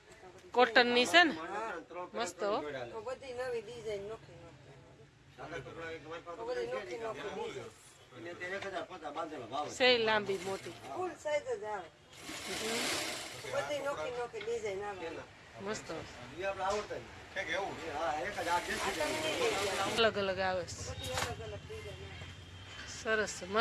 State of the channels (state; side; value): identical; both; correlation 1.00